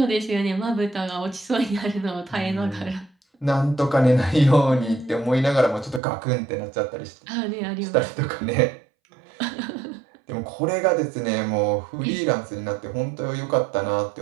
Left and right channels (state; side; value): drops out; left; at 6.0 s